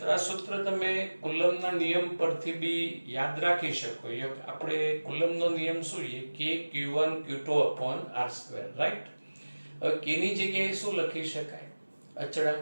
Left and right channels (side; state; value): both; inverted; correlation -1.00